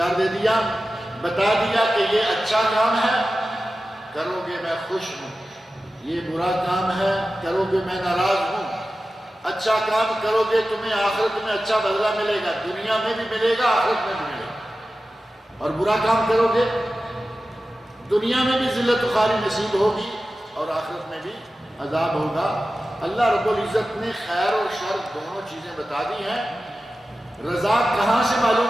دے دیا، بتا دیا کہ یہ اچھا کام ہے کرو گے میں خوش ہوں، یہ برا کام ہے کرو گے میں ناراض ہوں، اچھا کام کرو گے تمہیں آخرت میں اچھا بدلہ ملے گا، دنیا میں بھی ملے گا آخرت میں بھی ملے گا، اور برا کام کرو گے دنیا میں بھی ذلت و خواری نصیب ہوگی اور آخرت میں بھی عذاب ہوگا۔ اللہ رب العزت نے خیر اور شر دونوں چیزیں بتا دی ہیں۔ رضا کہاں سے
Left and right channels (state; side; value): normal; both; correlation 0.94